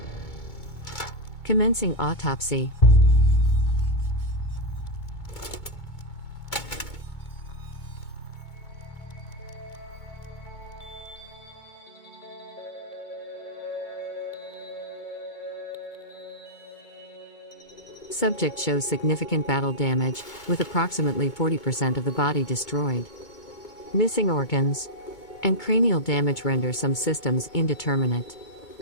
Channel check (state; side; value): late; right; 2.2 ms